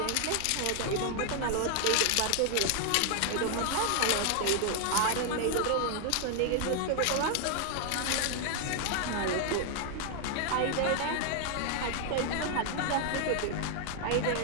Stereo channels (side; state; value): both; different; correlation 0.00